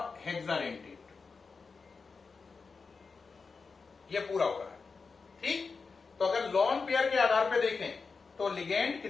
हेक्साडेंटेड। ये पूरा हो रहा है, ठीक। तो अगर लॉन पेयर के आधार पे देखें तो लिगेंड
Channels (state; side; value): quieter; right; 4.7 dB